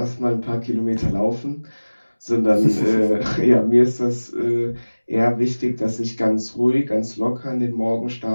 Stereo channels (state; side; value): inverted; both; correlation -1.00